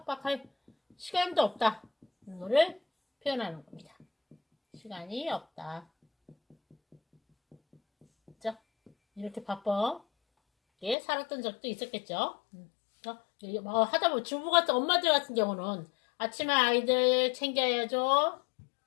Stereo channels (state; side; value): drops out; right; at 11.0 s